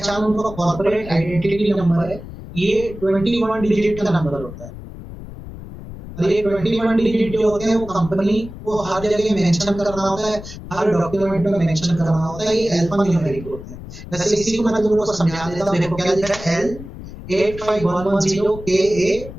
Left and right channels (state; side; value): noise; left; rumble, 13 dB below the sound